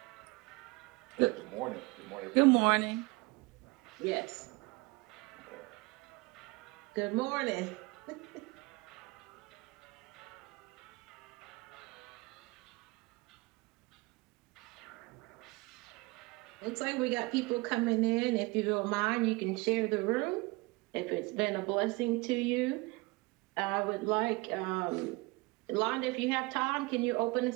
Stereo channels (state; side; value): quieter; left; 24.8 dB